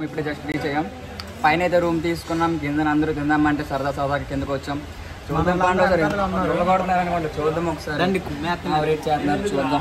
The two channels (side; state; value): both; identical; correlation 1.00